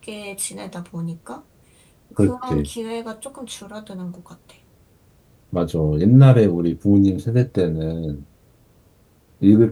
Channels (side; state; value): both; identical; correlation 1.00